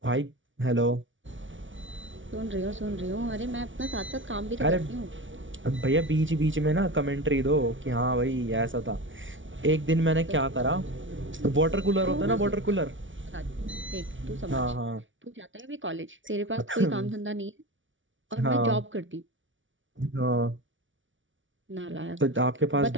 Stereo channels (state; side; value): late; left; 0.56 ms